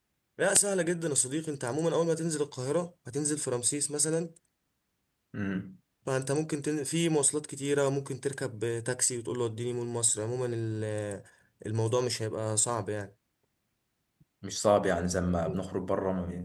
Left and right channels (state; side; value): identical; both; correlation 1.00